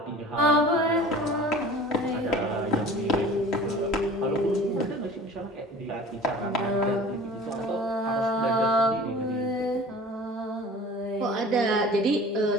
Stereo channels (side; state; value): both; normal; correlation 0.43